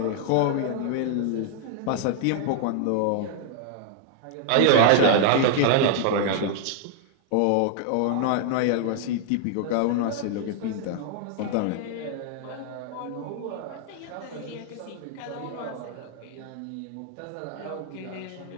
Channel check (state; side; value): different; both; correlation 0.00